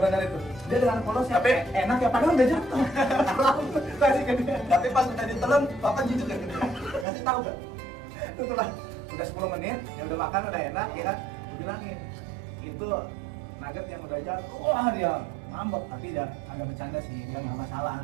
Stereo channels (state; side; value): drops out; left; at 7.1 s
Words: itu. Dia dengan polosnya, Tapi enak ya, padahal udah jatuh. Kasih ke dia. Tapi pas udah ditelan, bapak jujur kan? Kasih tahu kan? Itulah, udah 10 menit, yang udah makan udah enak ya kan? Gue bilangin, itu nugget yang udah jatuh, wah dia ngambek, tapi dia agak bercanda sih, dia nggak masalah,